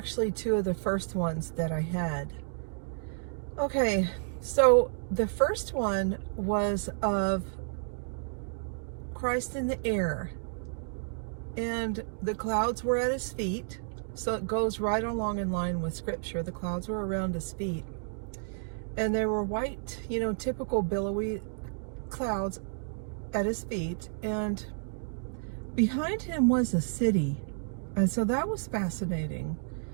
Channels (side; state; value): left; silent; digital silence